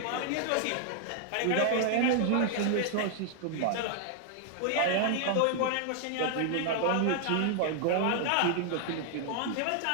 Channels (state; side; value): different; both; correlation 0.00